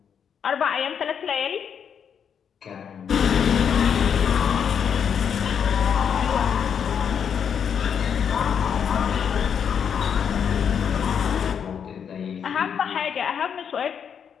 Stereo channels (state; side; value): quieter; right; 7.6 dB